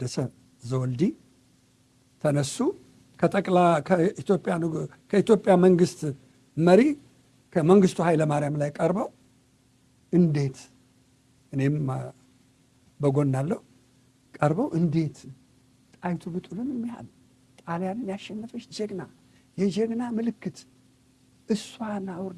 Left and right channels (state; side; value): identical; both; correlation 1.00